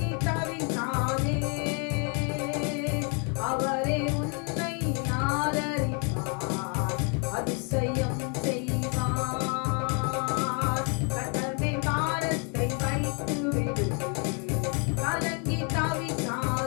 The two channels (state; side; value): quieter; right; 37.1 dB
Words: தவிக்காதே, அவரே உன்னை ஆதரிப்பார், அதிசயம் செய்வார். கர்த்தர் மேல் பாரத்தை வைத்து விடு, கலங்கி